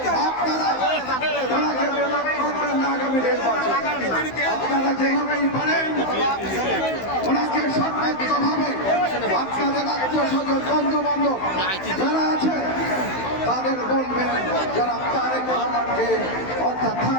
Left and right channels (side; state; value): right; late; 16 ms